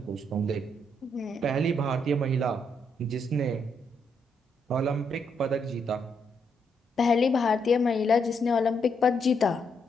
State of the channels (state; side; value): normal; both; correlation 0.77